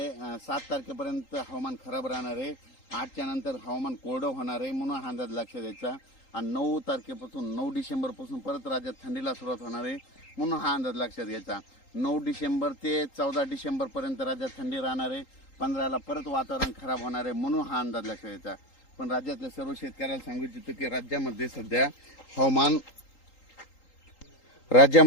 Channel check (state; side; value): late; right; 3.8 ms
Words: 7 तारखेपर्यंत हवामान खराब राहणार आहे. 8च्या नंतर हवामान कोरडं होणार आहे, म्हणून हा अंदाज लक्षात द्यायचा. आणि 9 तारखेपासून 9 डिसेंबरपासून परत राज्यात थंडीला सुरुवात होणार आहे, म्हणून हा अंदाज लक्षात घ्यायचा. 9 डिसेंबर ते 14 डिसेंबरपर्यंत राज्यात थंडी राहणार आहे. 15ला परत वातावरण खराब होणार आहे, म्हणून हा अंदाज लक्षात घ्यायचा. पण राज्यातल्या सर्व शेतकऱ्याला सांगू इच्छितो की राज्यामध्ये सध्या हवामान